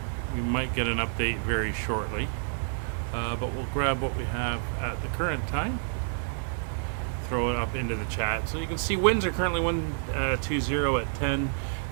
We might get an update very shortly, but we'll grab what we have at the current time, throw it up into the chat. So you can see winds are currently 120 at 10,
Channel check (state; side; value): silent; left; 59 dB below the other